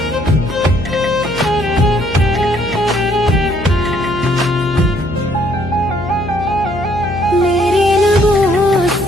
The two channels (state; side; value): noise; left; hum, 10 dB below the sound